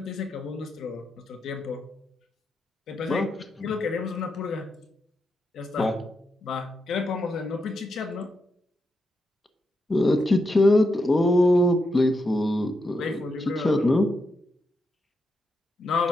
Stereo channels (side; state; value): both; normal; correlation 0.84